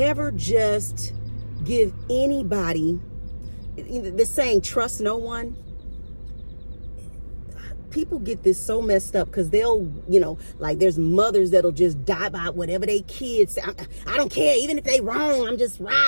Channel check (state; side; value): inverted; both; correlation -1.00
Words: just give anybody, the saying, trust no one. People get this so messed up because they'll, like there's mothers that'll just die by whatever they kids say. I don't care, even if they wrong, I'm just